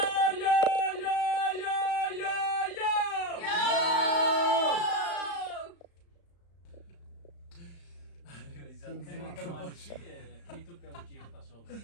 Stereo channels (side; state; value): right; late; 35 ms